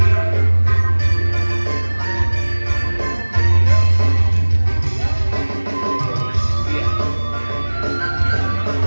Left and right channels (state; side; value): inverted; both; correlation -1.00